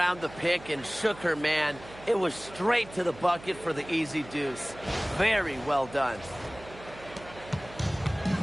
the pick and shook her man, it was straight to the bucket for the easy deuce. Very well done.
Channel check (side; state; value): right; noise; hum, 18 dB below the sound